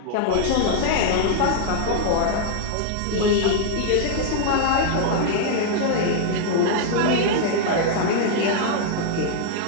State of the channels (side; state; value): both; different; correlation -0.01